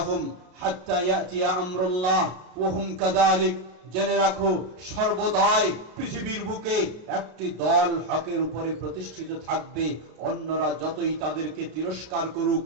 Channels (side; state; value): left; late; 32 ms